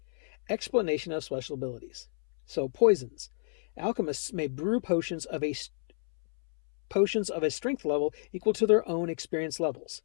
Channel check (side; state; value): right; silent; 58 dB below the other